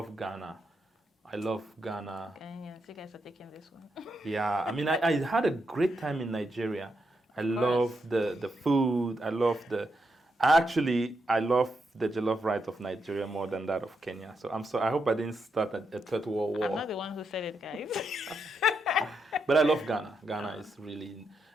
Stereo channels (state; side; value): normal; both; correlation 0.82